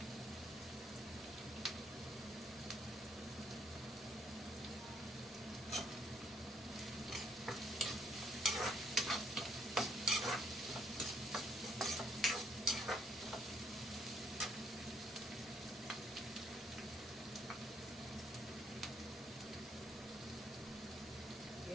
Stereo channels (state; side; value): normal; both; correlation 0.70